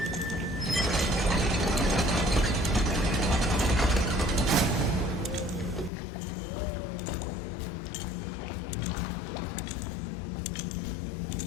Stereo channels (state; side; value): drops out; right; at 5.9 s